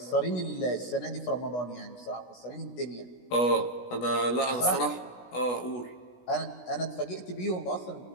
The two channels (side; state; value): right; late; 16 ms